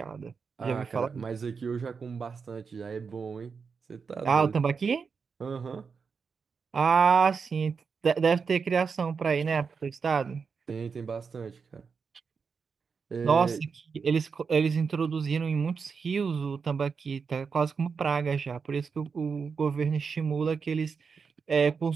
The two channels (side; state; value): left; quieter; 5.6 dB